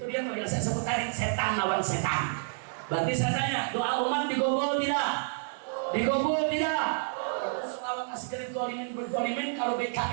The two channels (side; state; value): left; silent; 58 dB below the other